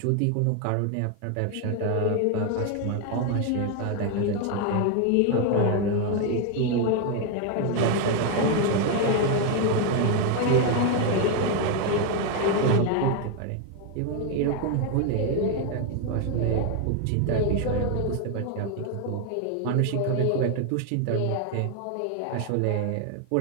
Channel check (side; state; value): both; different; correlation 0.01